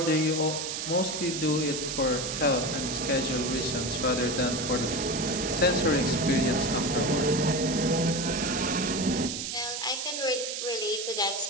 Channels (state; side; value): noise; right; hiss, 4 dB below the sound